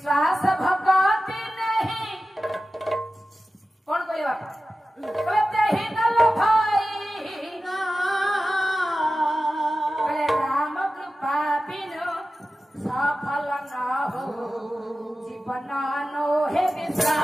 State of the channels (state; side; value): normal; both; correlation 0.94